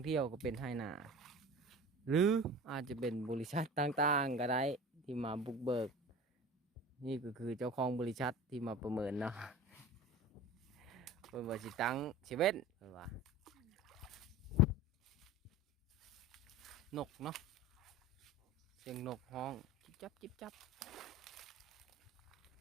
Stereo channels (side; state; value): both; normal; correlation 0.37